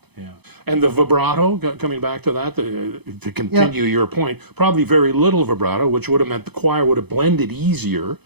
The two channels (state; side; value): late; left; 0.98 ms